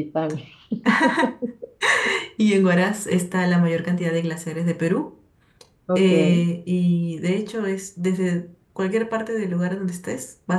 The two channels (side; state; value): both; identical; correlation 1.00